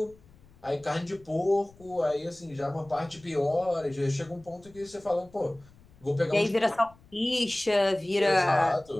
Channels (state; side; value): noise; left; rumble, 26 dB below the sound